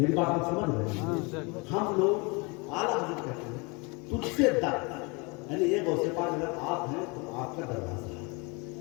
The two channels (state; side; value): quieter; right; 29.1 dB